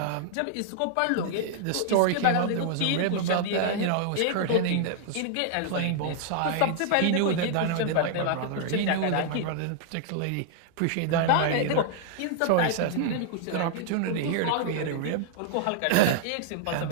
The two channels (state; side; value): different; both; correlation -0.01